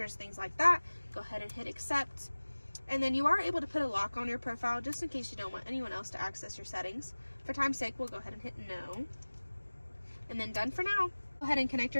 things like that. Go ahead and hit accept. And then you are able to put a lock on your profile just in case you don't want anyone else to access your settings. For time's sake, we'll go ahead and hit no. And then done for now. Go ahead and connect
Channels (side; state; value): both; inverted; correlation -1.00